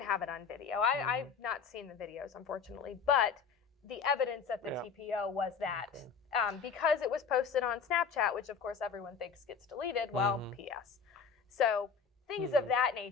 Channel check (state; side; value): quieter; right; 6.0 dB